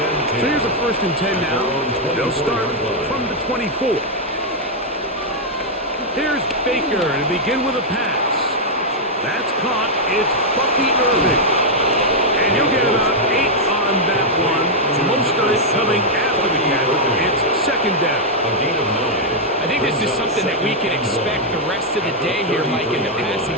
So here's a 1st and 10 now. They'll start from the 24. Here's Baker to begin with a pass. That's caught. It's Bucky Irving. And he'll get about 8 on that one. Most of it coming after the catch. It's 2nd down. A gain of 9. I think this is something that we can expect the rest of the day here, Mike, in the passing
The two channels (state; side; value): normal; both; correlation -0.03